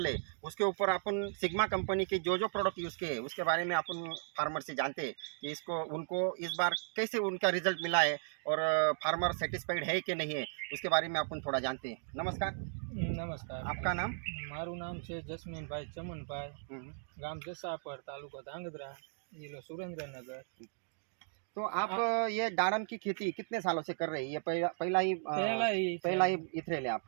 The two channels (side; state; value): left; silent; digital silence